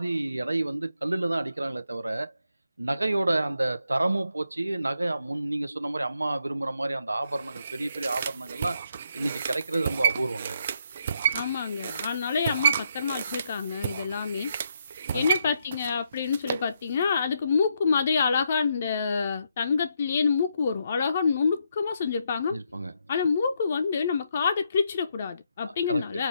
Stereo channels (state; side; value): inverted; both; correlation -0.78